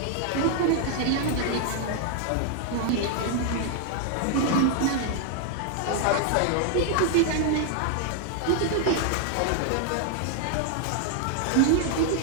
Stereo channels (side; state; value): both; different; correlation 0.00